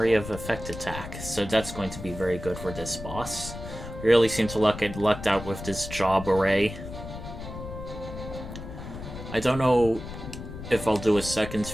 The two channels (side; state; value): left; noise; rumble, 10 dB below the sound